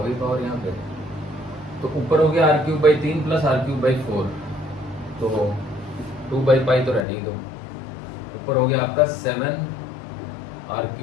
गई पावर यहाँ पे। तो ऊपर हो गया R cube by 3 plus R cube by 4, तो 2/पाई तो रहने ही दो। ऊपर हो गया आपका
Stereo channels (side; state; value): right; drops out; at 7.1 s